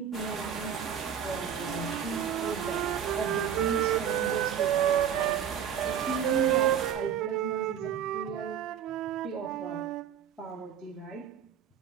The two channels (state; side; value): quieter; left; 8.7 dB